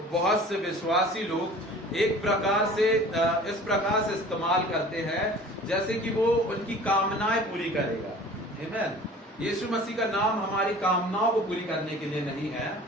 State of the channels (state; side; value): normal; both; correlation 0.44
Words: बहुत से विश्वासी लोग एक प्रकार से इस प्रकार से इस्तेमाल करते हैं जैसे कि वो उनकी कामनाएं पूरी करेगा, आमेन। यीशु मसीह का नाम हमारी कामनाओं को पूरी करने के लिए नहीं है।